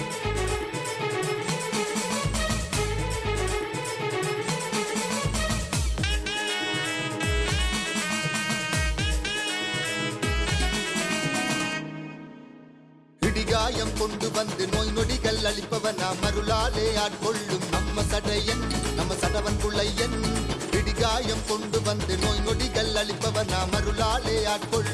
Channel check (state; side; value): identical; both; correlation 1.00